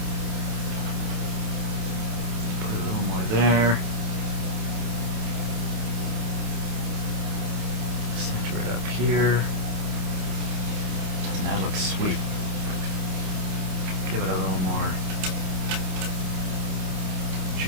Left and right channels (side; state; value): left; late; 28 ms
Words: put a little more there. Center it up here. Doesn't that look sweet? Give it a little more